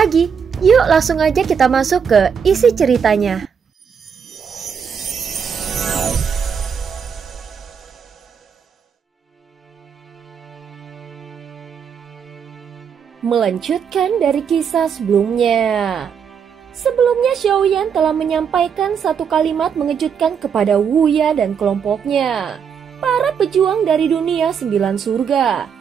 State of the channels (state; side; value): quieter; left; 7.1 dB